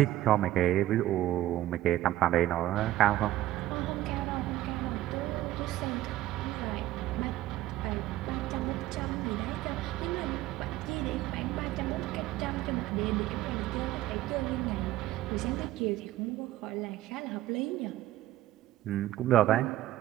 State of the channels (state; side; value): quieter; left; 14.8 dB